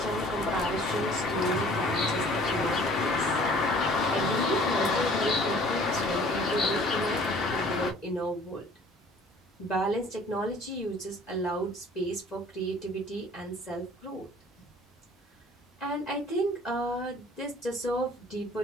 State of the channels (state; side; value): normal; both; correlation 0.51